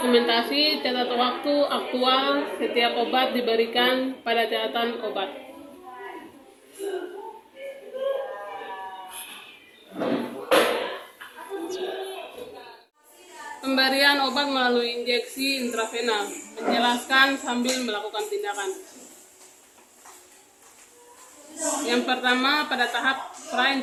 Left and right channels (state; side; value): identical; both; correlation 1.00